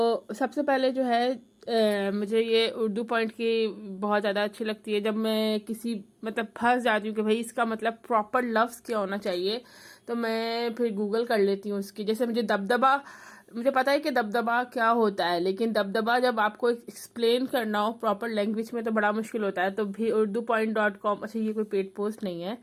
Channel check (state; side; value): identical; both; correlation 1.00